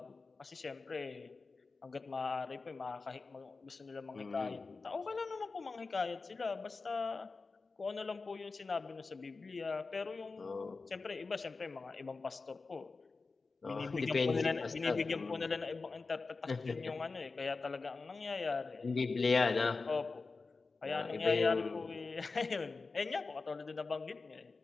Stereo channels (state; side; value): quieter; right; 4.1 dB